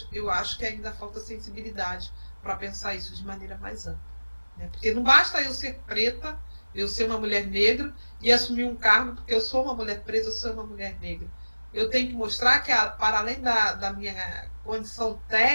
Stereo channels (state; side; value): inverted; both; correlation -1.00